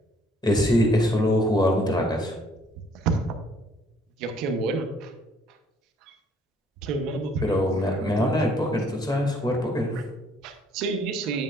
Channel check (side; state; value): both; normal; correlation 0.63